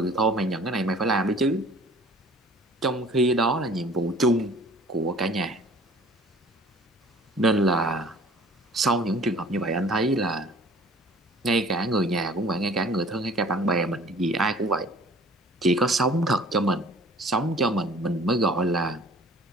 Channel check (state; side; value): normal; both; correlation 0.50